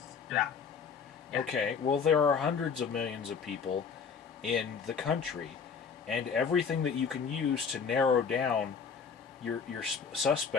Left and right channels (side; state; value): right; quieter; 6.1 dB